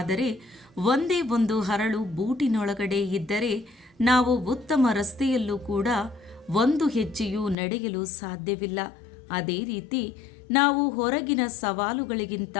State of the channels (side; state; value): right; drops out; at 7.6 s